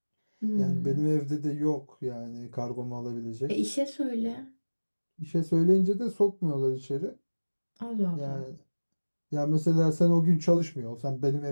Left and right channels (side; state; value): both; inverted; correlation -1.00